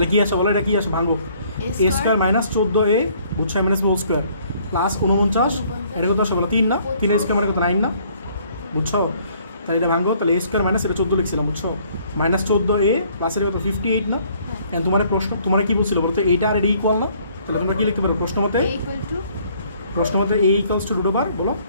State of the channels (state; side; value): inverted; both; correlation -0.61